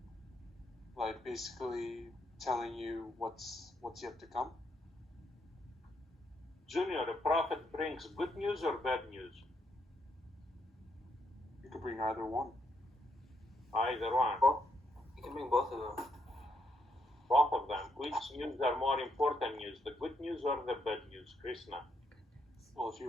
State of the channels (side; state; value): both; normal; correlation 0.77